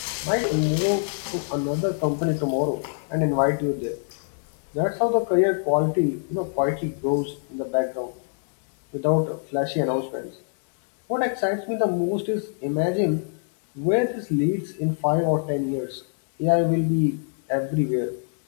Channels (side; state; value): right; silent; digital silence